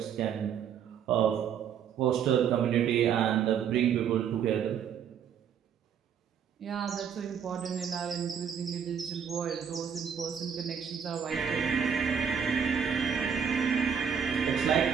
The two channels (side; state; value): left; quieter; 7.7 dB